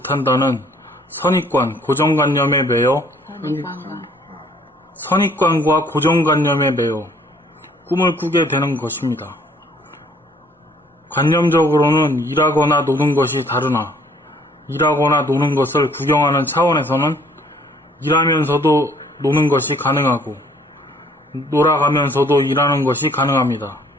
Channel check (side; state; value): both; normal; correlation 0.60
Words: 선입관, 고정관념에 매여 선입관과 고정관념에 매여 꿈을 꾸게 되는 것입니다. 관념적으로는 일하거나 노는 것이 다르나 일하거나 노는 것을 구경하는 차원에서는 일하면서도 노는 것이 가능하고 놀아가면서도 일하는 것이 가능합니다.